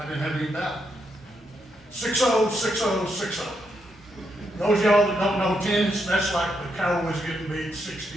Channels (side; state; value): both; normal; correlation 0.80